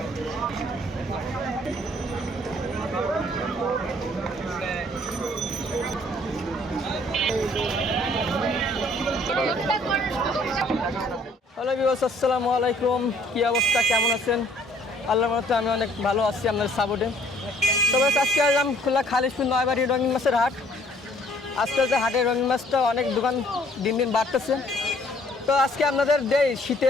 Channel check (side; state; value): both; normal; correlation 0.61